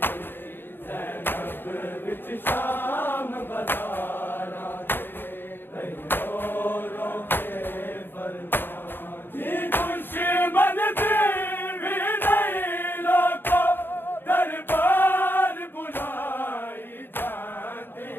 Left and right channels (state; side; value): late; right; 0.098 ms